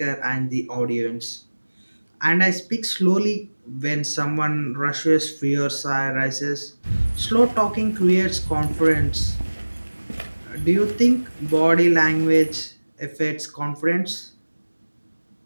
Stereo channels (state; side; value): inverted; both; correlation -1.00